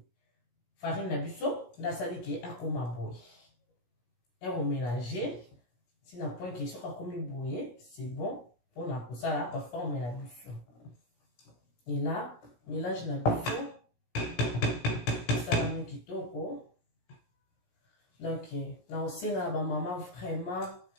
na biso ndasali ki akoma boye et on mélanger si na point ki soka komi boye c'est bon pour na kosala ba forme na biso et là mélange na biso ça mon kitoko. Donc, na osenga ba maman vraiment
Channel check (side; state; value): right; late; 17 ms